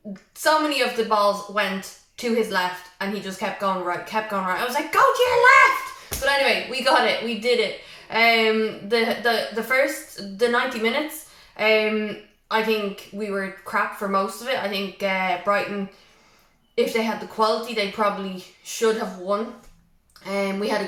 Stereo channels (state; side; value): identical; both; correlation 1.00